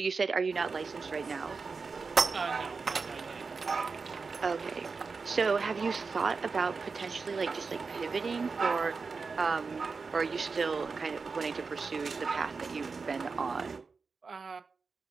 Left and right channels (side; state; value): left; quieter; 4.7 dB